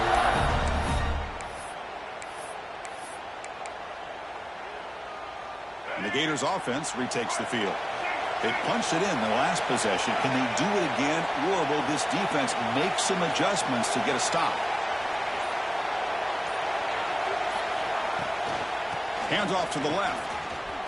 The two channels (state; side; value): identical; both; correlation 1.00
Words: And the Gators offense retakes the field. They punched it in the last possession. Can they do it again, or will this defense make some adjustments to get a stop? Hands off to the left.